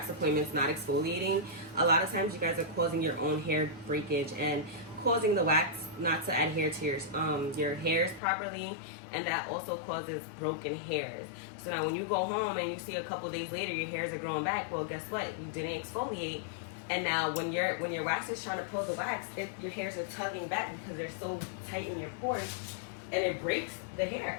appointments not exfoliating, a lot of times you guys are causing your own hair breakage and causing the wax not to adhere to your hairs properly, and that also causes broken hairs. So now when you go home and you see a couple days later your hairs are growing back, well, guess what? You didn't exfoliate. And now when your wax is trying to pull the wax, your hairs are tugging back because they're so tight in your pores, and it breaks the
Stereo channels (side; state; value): right; drops out; at 8.2 s